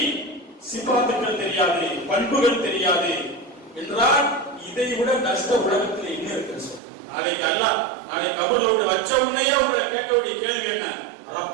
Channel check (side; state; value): left; drops out; at 6.8 s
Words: சிபாத்துக்கள் தெரியாது, பண்புகள் தெரியாது என்றால் இதை விட நஷ்ட உலகத்தில் என்ன இருக்கு? நாளைக்கு அல்லாஹ் நாளைக்கு கபரோடு வச்ச உடனே உங்களை கேட்க வேண்டிய கேள்வி என்ன?